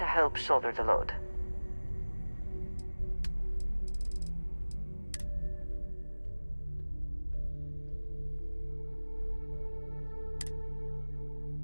help shoulder the load.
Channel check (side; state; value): both; inverted; correlation -1.00